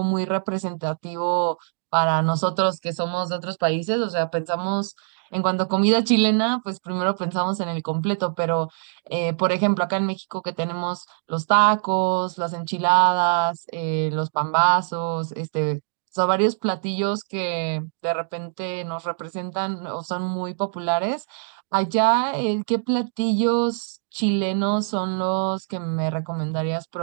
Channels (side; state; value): left; silent; 63 dB below the other